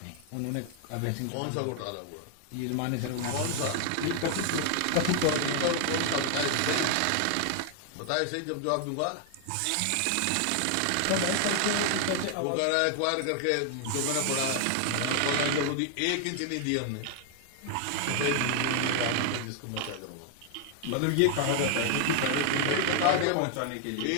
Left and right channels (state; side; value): different; both; correlation 0.00